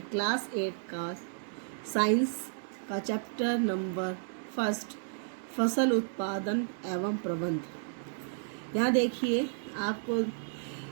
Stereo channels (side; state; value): left; silent; digital silence